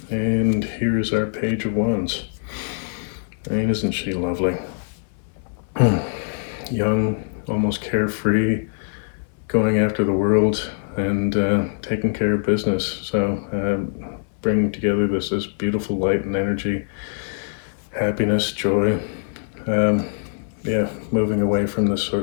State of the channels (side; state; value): right; silent; 64 dB below the other